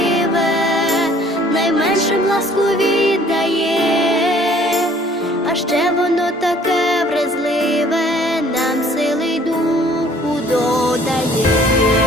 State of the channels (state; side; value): normal; both; correlation 0.57